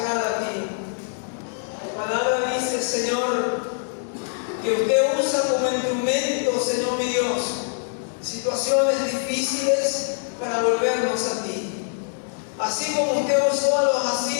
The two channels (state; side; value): silent; right; digital silence